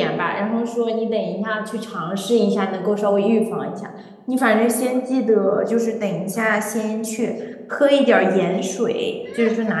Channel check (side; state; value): both; identical; correlation 1.00